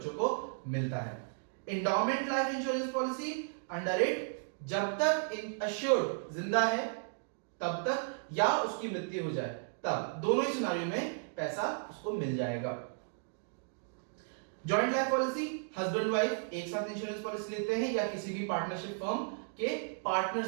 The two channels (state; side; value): silent; left; digital silence